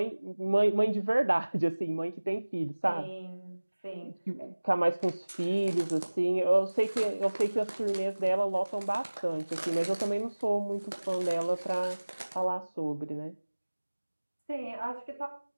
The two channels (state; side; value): inverted; both; correlation -1.00